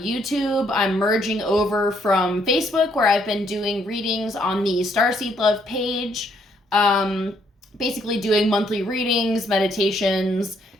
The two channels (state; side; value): normal; both; correlation 0.70